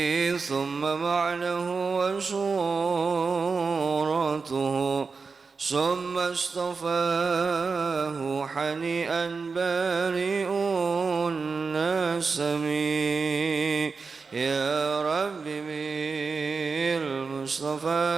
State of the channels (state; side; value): quieter; left; 4.7 dB